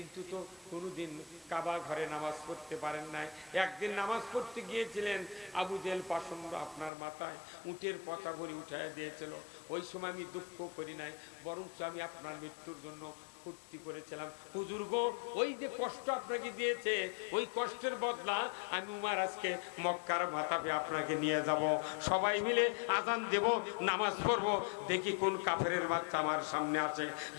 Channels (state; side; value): drops out; right; at 6.9 s